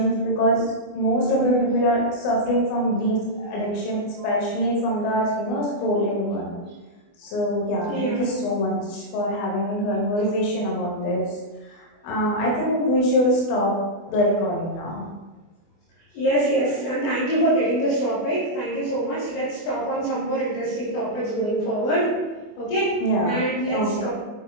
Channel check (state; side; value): late; right; 24 ms